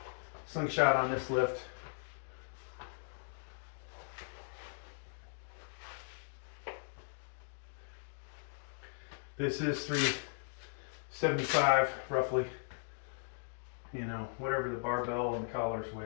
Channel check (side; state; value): right; silent; digital silence